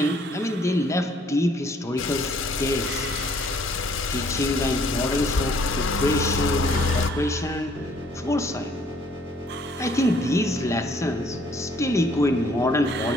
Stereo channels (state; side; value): normal; both; correlation 0.63